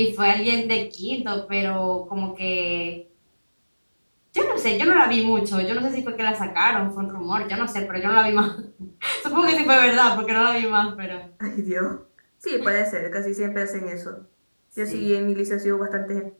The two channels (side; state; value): both; inverted; correlation -1.00